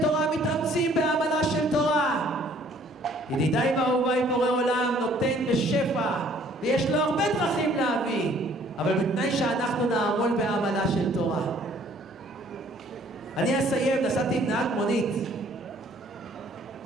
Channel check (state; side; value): normal; both; correlation 0.59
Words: תורה מתאמצים בעמלה של תורה. ידידיי ואהוביי, בורא עולם נותן בשפע, ויש לו הרבה דרכים להביא, אבל בתנאי שאנחנו נעמול בעמלה של תורה. אני אסיים, נסעתי עם נהג מונית